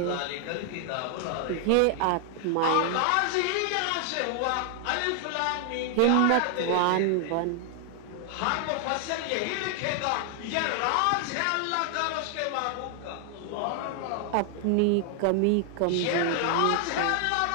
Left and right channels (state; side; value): different; both; correlation 0.00